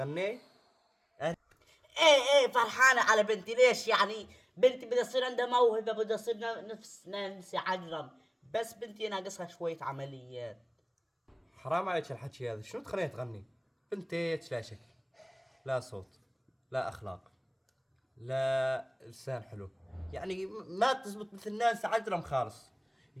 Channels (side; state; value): both; identical; correlation 1.00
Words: ايه فرحانة على بنتي. ليش يعني؟ بنتي بدها تصير عندها موهبة، بدها تصير نفس نانسي عجرم، بس بنتي ناقصها شوية عمليات. حرام عليك الحكي هذا، شنو تخليها تغني؟ بنتك لا شكل، لا صوت، لا اخلاق، لا لسان حلو، يعني ما تزبط مثل ناس عجرم خالص.